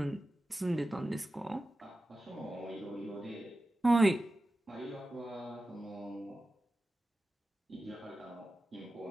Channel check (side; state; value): both; normal; correlation 0.94